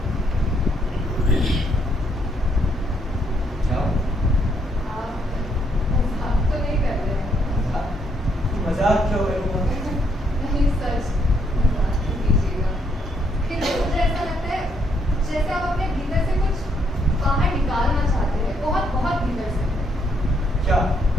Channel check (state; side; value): normal; both; correlation 0.72